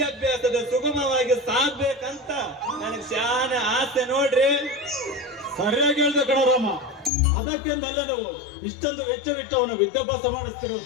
ಸುಗಮವಾಗಿ ಸಾಗ್ಬೇಕಂತ ನನಗೆ ಶಾನೆ ಆಸೆ ನೋಡ್ರಿ. ಸರಿಯಾಗಿ ಹೇಳ್ದೆ ಕಣರಾಮ. ಅದಕ್ಕೆಂದಲ್ಲ ನಾವು ಇಷ್ಟೊಂದು ವೆಚ್ಚವಿಟ್ಟು ಅವನು ವಿದ್ಯಾಭ್ಯಾಸ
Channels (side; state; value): right; drops out; at 7.1 s